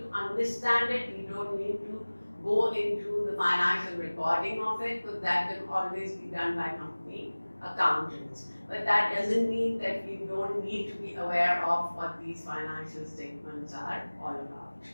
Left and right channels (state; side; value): inverted; both; correlation -1.00